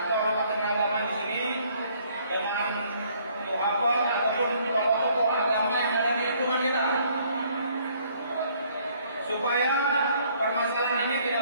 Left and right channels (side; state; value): both; inverted; correlation -0.63